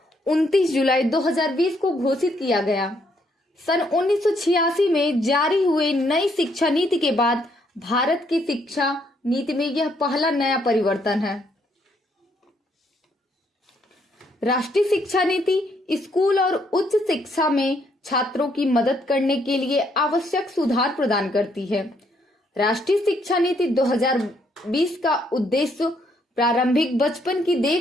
29 जुलाई 2020 को घोषित किया गया। सन 1986 में जारी हुए नई शिक्षा नीति के बाद भारत की शिक्षा नीति में यह पहला नया परिवर्तन है। राष्ट्रीय शिक्षा नीति स्कूल और उच्च शिक्षा में छात्रों की मदद करने के लिए आवश्यक सुधार प्रदान करती है। राष्ट्रीय शिक्षा नीति 2020 का उद्देश्य प्रारंभिक बचपन की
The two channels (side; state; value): both; normal; correlation 0.71